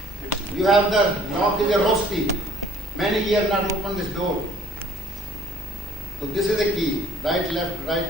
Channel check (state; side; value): normal; both; correlation 0.57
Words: You have the lock is a rosti. Many years not open this door. So this is the key. Right, left,